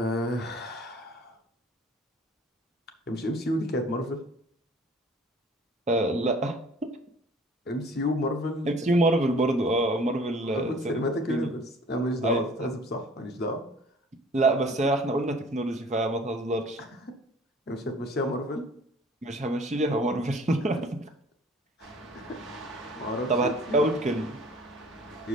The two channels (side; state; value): both; normal; correlation 0.51